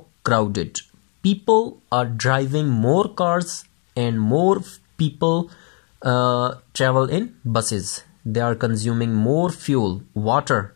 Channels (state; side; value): quieter; right; 37.7 dB